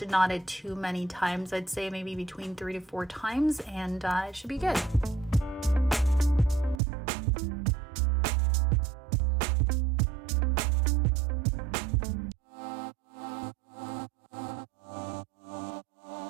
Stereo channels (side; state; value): left; drops out; at 6.8 s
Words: knot it too many times. I'd say maybe between 3 to 4 times, and it should be good.